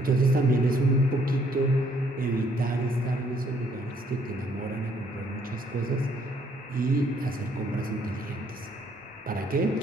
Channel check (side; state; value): both; normal; correlation 0.66